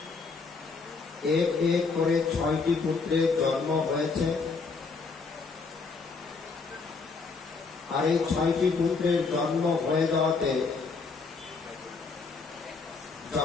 এক এক করে 6টি পুত্রের জন্ম হয়েছে, আর এই 6টি পুত্রের জন্ম হয়ে যাওয়াতে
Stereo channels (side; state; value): right; quieter; 4.5 dB